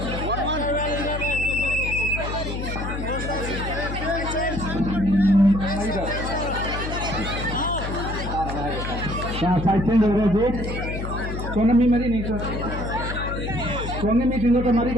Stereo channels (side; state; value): left; noise; hum, 5 dB below the sound